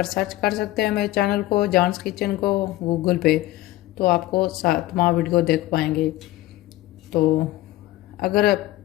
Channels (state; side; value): quieter; right; 16.6 dB